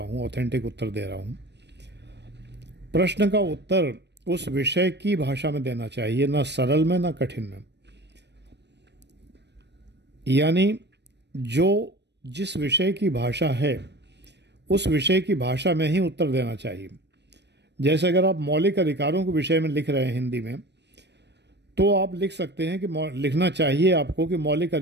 ऑथेंटिक उत्तर दे रहा हूँ। प्रश्न का उत्तर उस विषय की भाषा में देना चाहिए, ना सरल में ना कठिन में। यानी जो जिस विषय की भाषा है उस विषय की भाषा में ही उत्तर देना चाहिए। जैसे अगर आप मौलिक अधिकारों के विषय में लिख रहे हैं हिंदी में, तो आप लिख सकते हैं कि लिखना चाहिए आपको कि मौलिक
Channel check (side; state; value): left; late; 0.50 ms